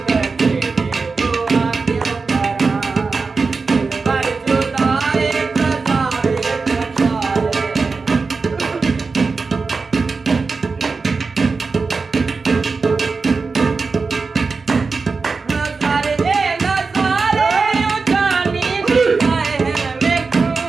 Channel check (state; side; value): quieter; left; 4.4 dB